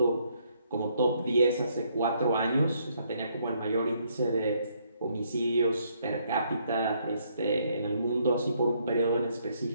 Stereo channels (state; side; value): inverted; both; correlation -0.70